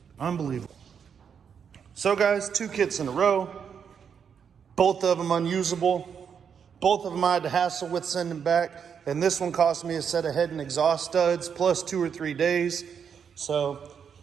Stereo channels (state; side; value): quieter; left; 7.2 dB